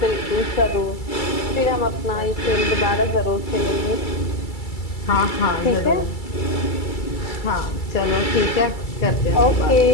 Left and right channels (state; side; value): late; right; 2.3 ms